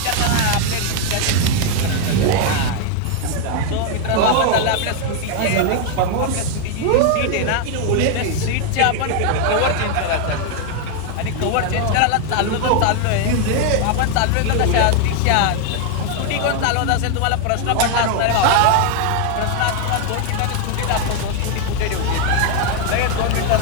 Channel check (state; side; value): different; both; correlation 0.01